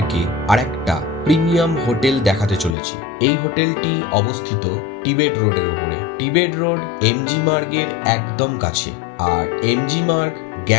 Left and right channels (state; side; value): drops out; right; at 2.8 s